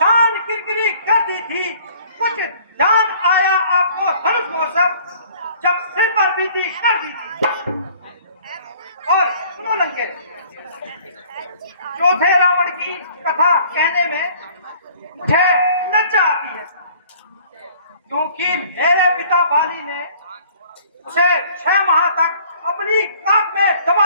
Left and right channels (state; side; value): inverted; both; correlation -0.53